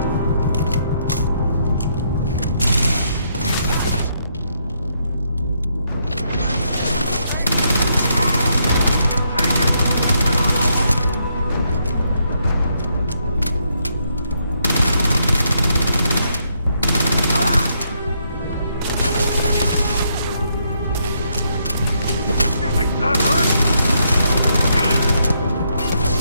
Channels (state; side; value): inverted; both; correlation -0.75